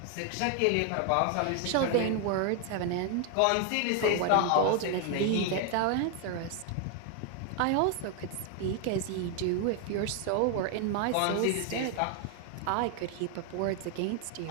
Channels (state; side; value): different; both; correlation 0.00